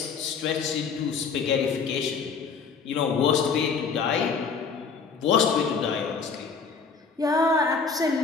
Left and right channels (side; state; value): right; quieter; 5.4 dB